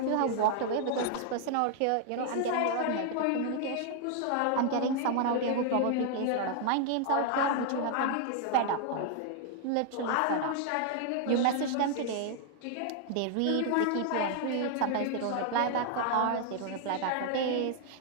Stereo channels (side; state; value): both; different; correlation 0.00